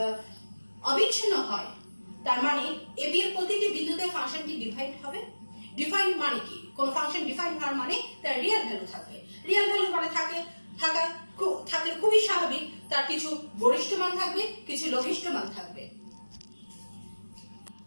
অবিচ্ছিন্ন হয়, তার মানে ab এর প্রতিটি বিন্দুতে ফাংশনটি ডিফাইন্ড হবে। ডিফাইন্ড মানে কি, কোন ফাংশন ডিফাইন্ড হওয়ার মানে তার রিয়েল ভ্যালু থাকবে। রিয়েল ভ্যালু মানে থাকলে খুবই স্বাভাবিক, তার কিছু গরিষ্ঠ মান থাকবে, কিছু লঘিষ্ঠ মান থাকবে।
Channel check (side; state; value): both; inverted; correlation -1.00